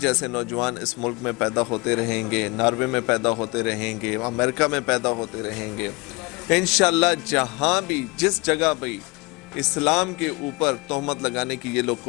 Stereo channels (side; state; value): right; quieter; 25.9 dB